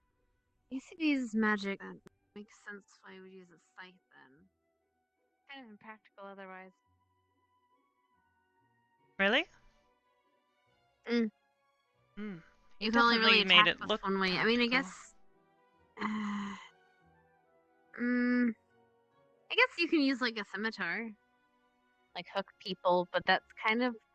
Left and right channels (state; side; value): identical; both; correlation 1.00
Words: ACB's magic. That makes sense why I would use a scythe then. Kind of impractical otherwise. Really? Mm. He You can only definitely really made attack it with look one way. I mean, I practical. guess. I guess you can use like a scimitar, like hook people, but that's kind of